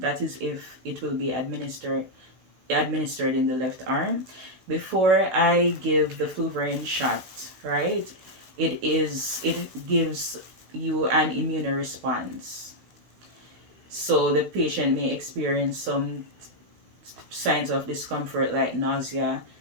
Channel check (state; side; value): late; left; 16 ms